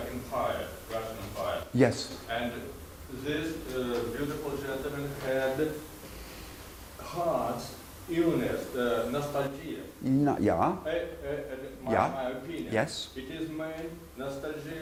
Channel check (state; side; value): identical; both; correlation 1.00